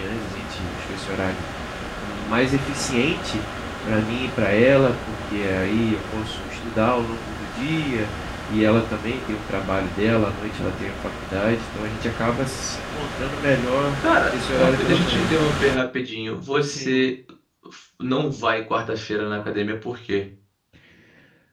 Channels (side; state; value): both; identical; correlation 1.00